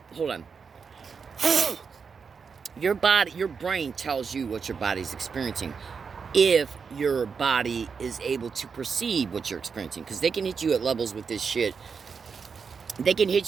hold on. Your brain tells you what your body's experiencing. If your body is able to perceive what you're experiencing. Because they can hit you at levels with this shit. They can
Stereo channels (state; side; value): quieter; left; 5.7 dB